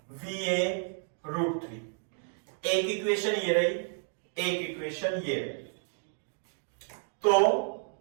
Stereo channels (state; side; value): silent; left; 57 dB below the other